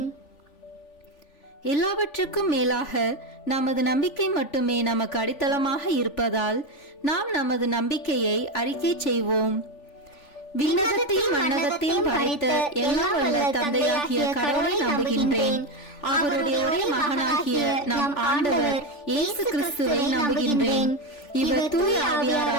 எல்லாவற்றுக்கும் மேலாக நமது நம்பிக்கை மட்டுமே நமக்கு அடித்தளமாக இருப்பதால் நாம் நமது நம்பிக்கையை அறிக்கை செய்வோம். விண்ணகத்தையும் மண்ணகத்தையும் படைத்த எல்லாம் வல்ல தந்தையாகிய கடவுளை நம்புகின்றேன். அவருடைய ஒரே மகனாகிய நம் ஆண்டவர் இயேசு கிறிஸ்துவை நம்புகின்றேன். இவர் தூய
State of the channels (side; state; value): right; late; 3.4 ms